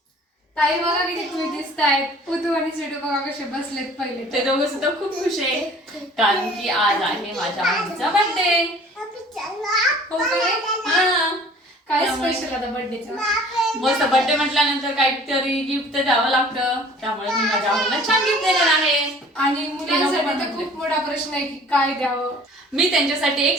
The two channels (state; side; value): normal; both; correlation 0.50